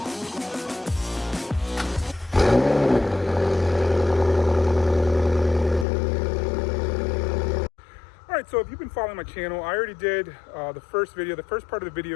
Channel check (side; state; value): right; drops out; at 5.9 s